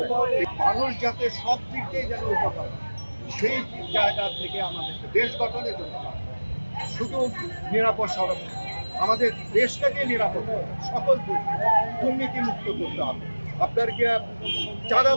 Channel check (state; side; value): inverted; both; correlation -1.00